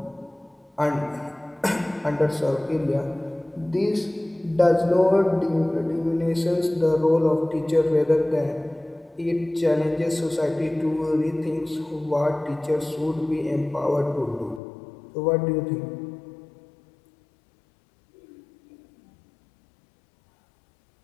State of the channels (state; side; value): drops out; right; at 14.6 s